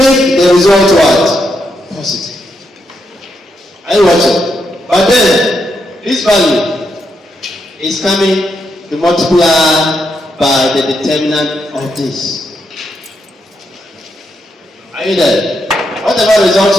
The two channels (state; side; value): normal; both; correlation 0.81